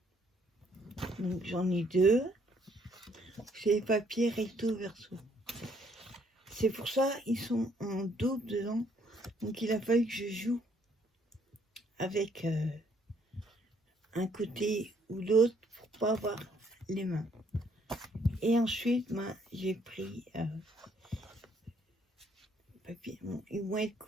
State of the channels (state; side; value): normal; both; correlation 0.67